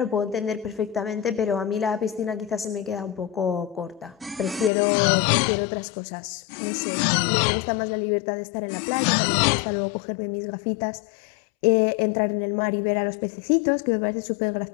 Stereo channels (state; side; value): drops out; right; at 4.7 s